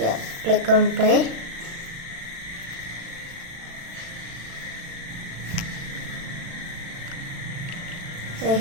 Click on play. I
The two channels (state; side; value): late; left; 36 ms